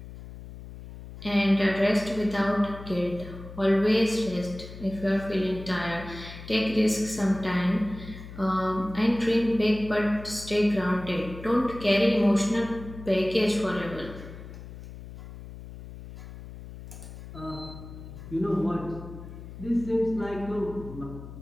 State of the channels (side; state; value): left; noise; hum, 14 dB below the sound